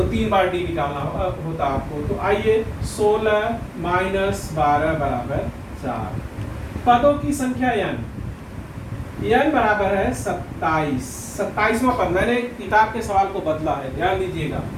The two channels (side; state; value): both; identical; correlation 1.00